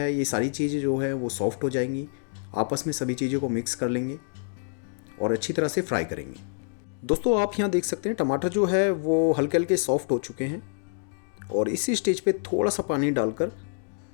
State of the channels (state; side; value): silent; right; digital silence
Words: ये सारी चीज़ें जो है वो सॉफ्ट हो जाएंगी। आपस में सभी चीज़ों को मिक्स कर लेंगे और अच्छी तरह से फ्राई करेंगे। दोस्तों, आप यहाँ देख सकते हैं टमाटर जो है वो हल्के हल्के सॉफ्ट हो चुके हैं और इसी स्टेज पे थोड़ा सा पानी डालकर